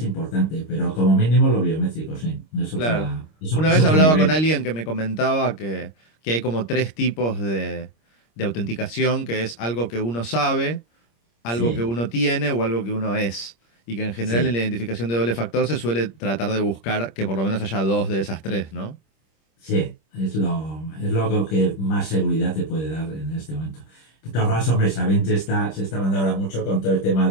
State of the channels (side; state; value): right; late; 26 ms